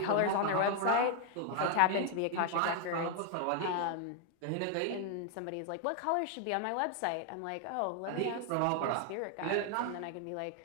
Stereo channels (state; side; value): different; both; correlation 0.00